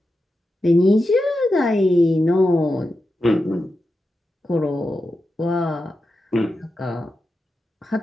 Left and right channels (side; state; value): both; normal; correlation 0.90